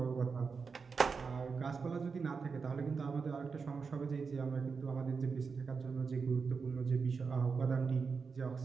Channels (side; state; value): left; quieter; 5.2 dB